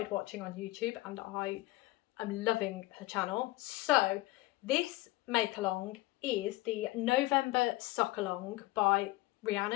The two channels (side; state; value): right; quieter; 19.6 dB